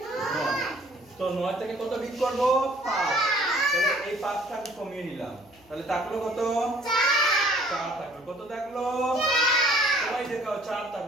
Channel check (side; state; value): left; noise; hum, 29 dB below the sound